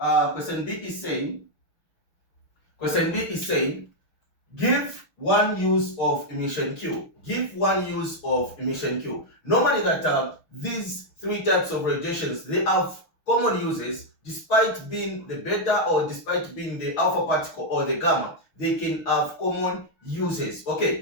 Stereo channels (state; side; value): late; right; 6.5 ms